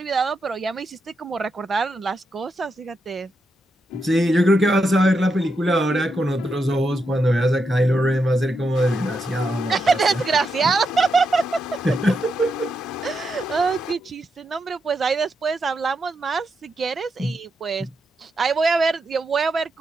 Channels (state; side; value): normal; both; correlation 0.84